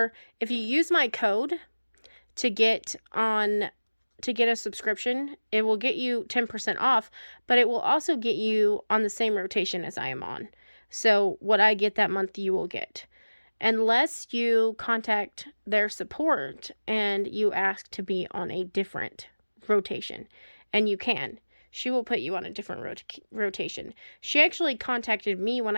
if you use my code to get a subscription, it will get you 10% off, but it will also get you on the same rotation as I am on. So what I get that month, you will get. Unless you contact their support and you ask to be on a different rotation. And you can. She will put you on a different rotation. She actually contacted me when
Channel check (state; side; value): inverted; both; correlation -1.00